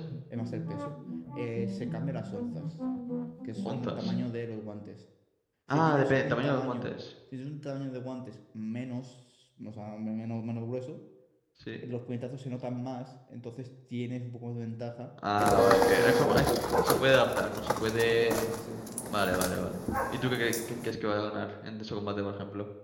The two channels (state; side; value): identical; both; correlation 1.00